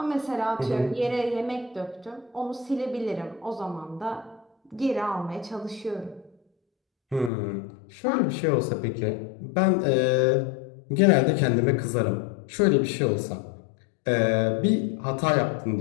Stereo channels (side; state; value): right; drops out; at 7.3 s